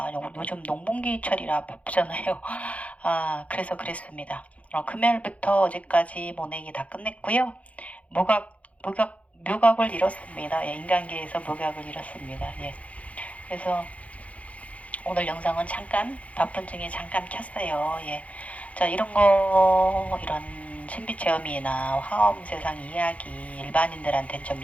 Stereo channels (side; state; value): right; late; 0.066 ms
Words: 요즘 농번기철이라 바쁘잖아요. 그래서 그랬습니다. 금요일부터 어제까지 모내기 다 끝냈고요. 묘각을 잃었습니다. 예, 인간계에서 묘각을 잃었습니다. 예. 그래서 오늘 영상은 잠깐 바쁜 중에 잠깐 켰어요. 예. 자, 이런 신비 체험이나 화엄 세상 이야기 일반인들한테는 좀